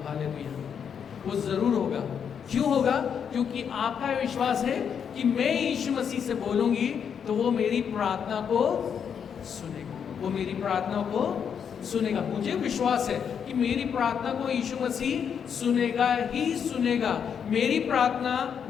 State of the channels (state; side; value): quieter; right; 7.5 dB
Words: हालेलुया, वो जरूर होगा। क्यों होगा? क्योंकि आपका विश्वास है कि मैं यीशु मसीह से बोलूंगी तो वो मेरी प्रार्थना को सुनेगा, वो मेरी प्रार्थना को सुनेगा। मुझे विश्वास है कि मेरी प्रार्थना को यीशु मसीह सुनेगा ही सुनेगा। मेरी प्रार्थना,